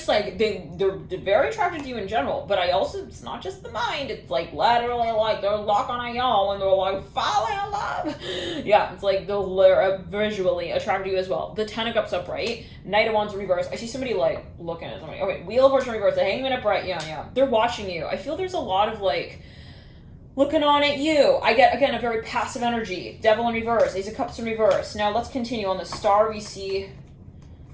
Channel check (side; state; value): both; identical; correlation 1.00